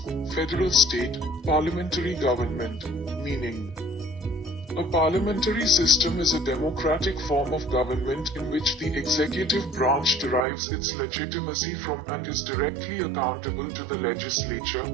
federal state, parliamentary government. Meaning. A parliamentary system is a democratic form of government in which the executive branch derives its legitimacy from and is directly accountable to the legislature,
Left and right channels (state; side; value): drops out; left; at 10.5 s